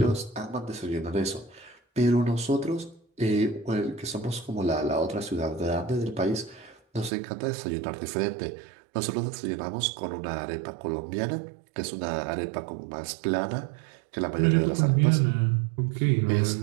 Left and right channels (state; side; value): drops out; left; at 7.1 s